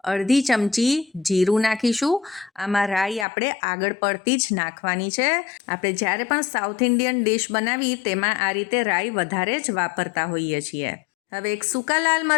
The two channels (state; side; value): drops out; right; at 3.2 s